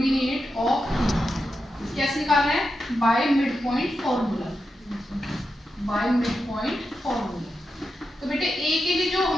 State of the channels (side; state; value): both; normal; correlation 0.88